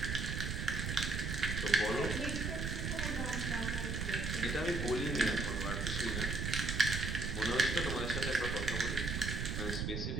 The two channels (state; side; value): noise; right; rumble, 2 dB below the sound